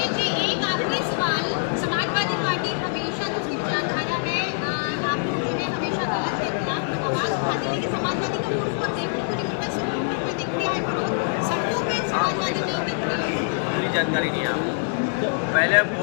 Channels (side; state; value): right; silent; digital silence